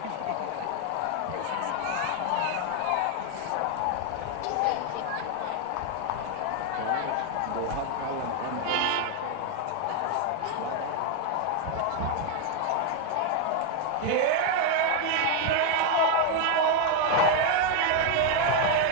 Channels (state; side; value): different; both; correlation 0.01